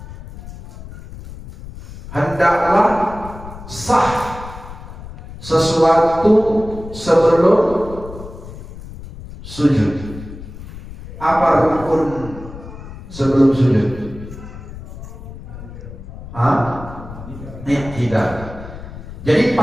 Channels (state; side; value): noise; left; rumble, 14 dB below the sound